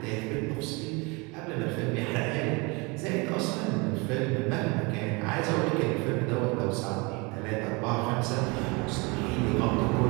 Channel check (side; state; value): left; quieter; 27.9 dB